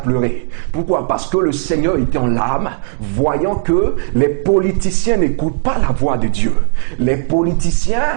Pourquoi? Parce que le Seigneur était en larmes, voyant que les politiciens n'écoutent pas la voix de Dieu. Les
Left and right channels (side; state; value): left; silent; 58 dB below the other